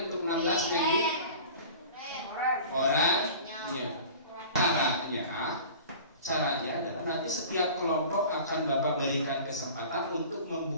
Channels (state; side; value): inverted; both; correlation -0.40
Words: untuk 16 Negi oranye. Caranya adalah nanti setiap kelompok akan Bapak berikan kesempatan untuk